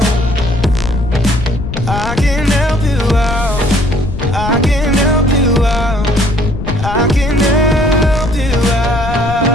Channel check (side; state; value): left; noise; rumble, 5 dB below the sound